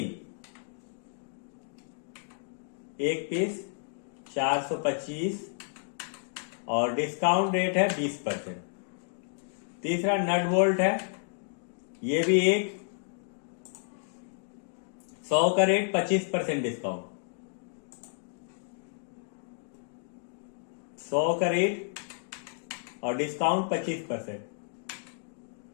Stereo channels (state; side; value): silent; right; digital silence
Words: एक पीस 425 और डिस्काउंट रेट है 20%। तीसरा नट बोल्ट है, ये भी एक 100 का रेट 25% डिस्काउंट, 100 का रेट और डिस्काउंट 25%।